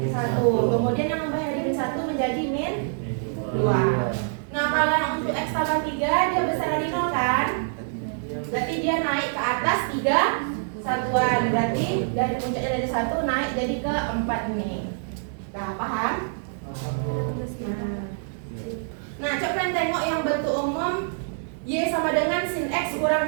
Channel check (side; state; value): left; silent; digital silence